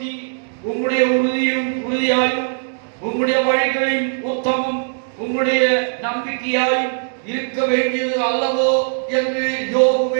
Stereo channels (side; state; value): left; silent; digital silence